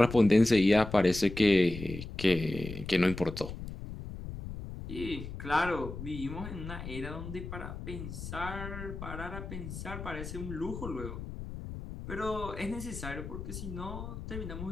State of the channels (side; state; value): left; noise; rumble, 9 dB below the sound